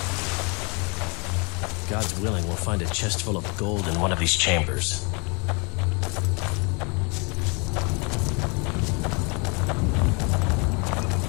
God's willing, we'll find a chest full of gold in one of these chambers.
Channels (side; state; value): right; quieter; 32.2 dB